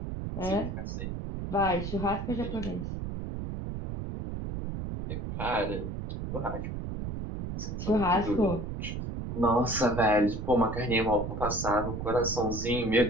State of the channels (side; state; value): right; noise; rumble, 5 dB below the sound